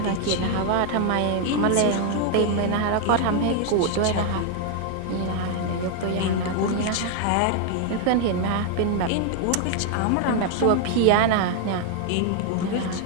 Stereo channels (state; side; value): different; both; correlation 0.00